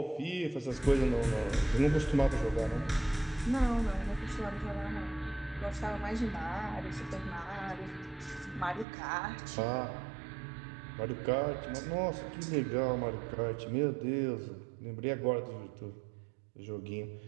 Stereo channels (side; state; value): left; drops out; at 8.8 s